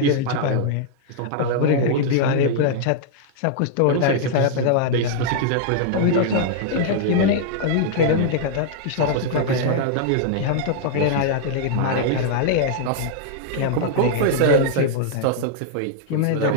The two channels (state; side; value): different; both; correlation -0.01